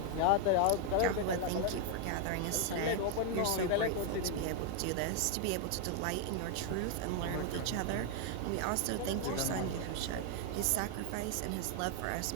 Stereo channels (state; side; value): different; both; correlation 0.00